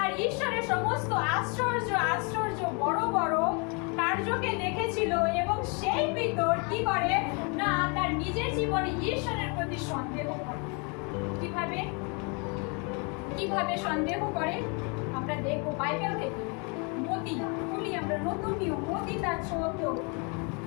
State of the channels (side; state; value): right; quieter; 33.7 dB